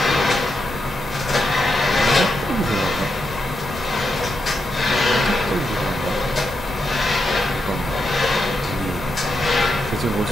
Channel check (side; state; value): both; normal; correlation 0.84